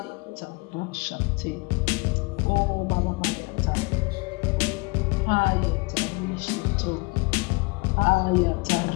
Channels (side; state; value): right; quieter; 27.4 dB